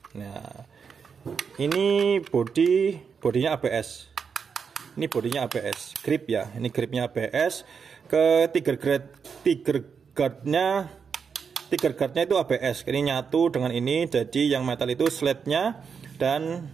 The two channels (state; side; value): quieter; left; 6.2 dB